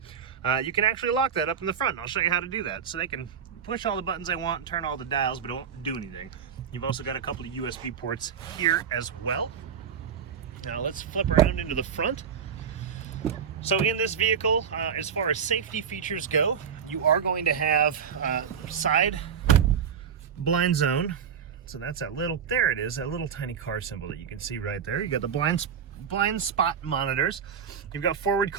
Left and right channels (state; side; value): quieter; left; 7.3 dB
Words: you can actually lock that up in the front. I'll show you how to do that. So they can push all the buttons they want, turn all the dials, but it won't do anything. You've also got a couple of USB ports here as well. Now let's flip around into the front. So in this vehicle, as far as safety features go, you are going to have side blind zone. So that's that little, there it is, that little tiny car symbol that you can see right there. You got the blind spot monitors. You've got forward